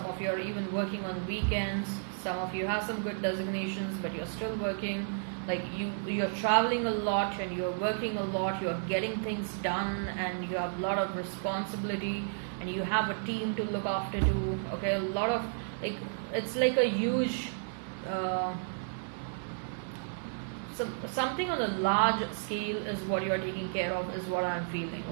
of you are even working on weekends. Some of you have some good designations, but you're still working. Like you're traveling a lot and you're working a lot. You're getting things done and you have a lot of responsibility and you have a team to look after too. Okay, a lot of it's like a huge. Something on a large scale is what you are taking care of, is what I'm feeling,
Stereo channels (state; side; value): silent; left; digital silence